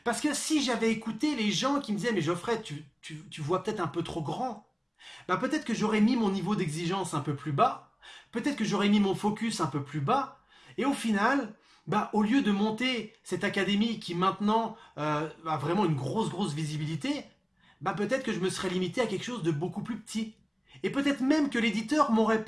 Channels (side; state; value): both; identical; correlation 1.00